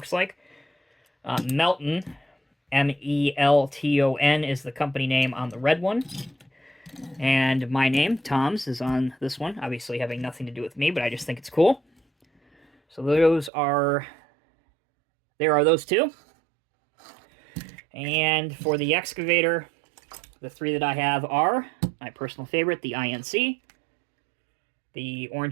like, Melton, M-E-L-T-O-N is the company name on the red one. And my name, Tom's, is on this one, obviously having nothing to do with me, but I just think it's cool. So there are those two. And for the excavator, The three that I have are my personal favorite, the INC, the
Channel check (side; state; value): left; drops out; at 13.5 s